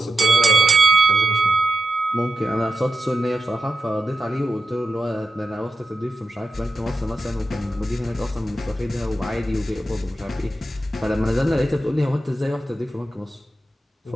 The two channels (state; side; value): normal; both; correlation 0.89